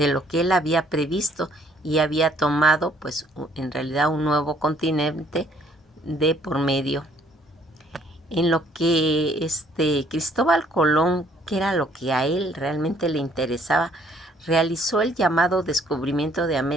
lo que él había previsto y había tomado pues en realidad un nuevo continente de por medio. En lo que Cristóbal Colón, que era lo que a él realmente le interesaba, realizó el llamado descubrimiento de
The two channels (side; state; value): both; normal; correlation 0.63